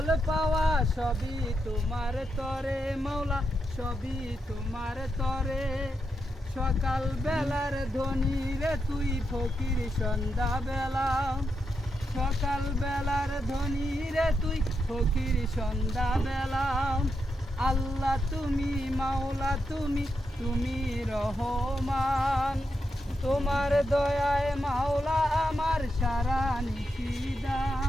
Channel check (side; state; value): both; normal; correlation 0.84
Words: পাওয়া সবই তোমার তরে মাওলা, সবই তোমার তরে। সকাল বেলার ধনী রে তুই, ফকির সন্ধ্যা বেলা। সকাল বেলার ধনী রে তুই, ফকির সন্ধ্যা বেলা। আল্লাহ তুমি মাওলা তুমি রহমান। তোমার দয়ায় মাওলা আমার সারা